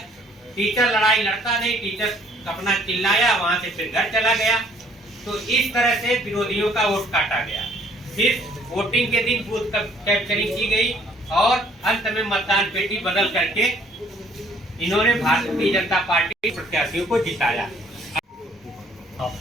टीचर लड़ाई लड़ता नहीं, टीचर अपना चिल्लाया, वहां से फिर घर चला गया। तो इस तरह से विरोधियों का वोट काटा गया। फिर वोटिंग के दिन बूथ कैप्चरिंग की गई और अंत में मतदान पेटी बदल करके इन्होंने भारतीय जनता पार्टी प्रत्याशियों को जिताया।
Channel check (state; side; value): normal; both; correlation 0.61